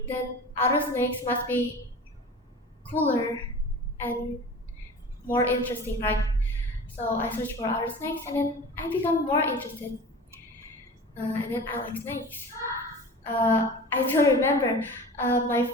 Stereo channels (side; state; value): both; normal; correlation 0.37